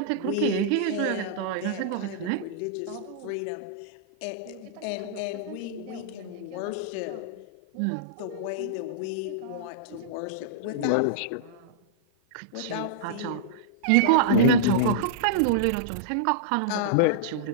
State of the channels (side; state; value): both; different; correlation -0.03